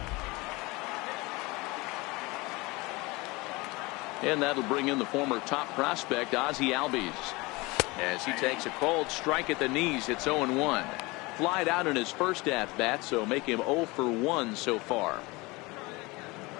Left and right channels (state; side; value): quieter; right; 23.7 dB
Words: And that'll bring in the former top prospect, Ozzie Albies. As he takes a cold strike at the knees, it's 0-1. Flied out in his first at-bat, so make him 0 for 1 so far.